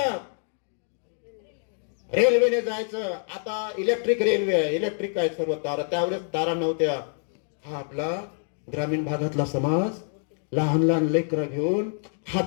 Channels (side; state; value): right; silent; 59 dB below the other